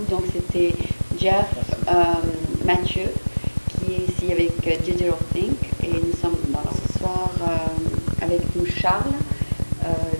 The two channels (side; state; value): both; inverted; correlation -1.00